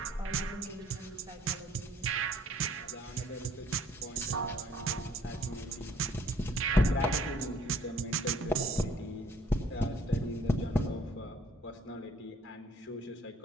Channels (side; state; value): both; normal; correlation 0.59